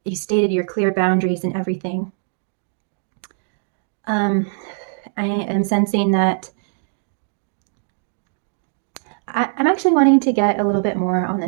stated your clear boundaries and everything, I am sensing that I'm actually wanting to get a little bit more on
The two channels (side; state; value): left; silent; digital silence